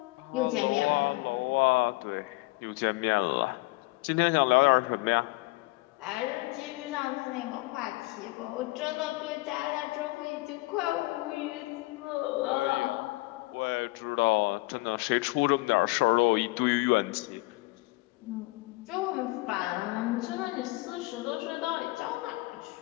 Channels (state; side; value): quieter; right; 22.8 dB